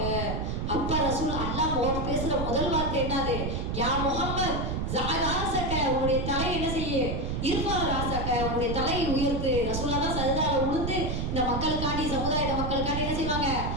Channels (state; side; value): noise; right; rumble, 1 dB below the sound